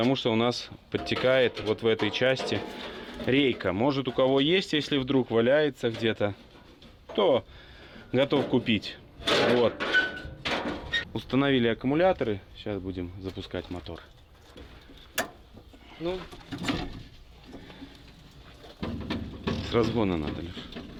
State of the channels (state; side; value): identical; both; correlation 1.00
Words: что у нас подтекает вот в этой части рейка. Может, у кого есть, если вдруг валяется где-то, то готов купить. Вот. Установили аккумуляторы. Сейчас будем запускать мотор. Ну, С разгона надо, Леш.